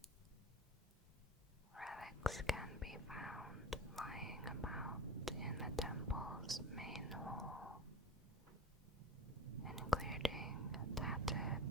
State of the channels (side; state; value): both; normal; correlation 0.31